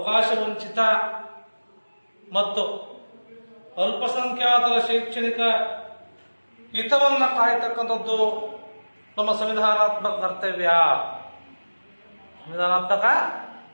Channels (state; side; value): inverted; both; correlation -1.00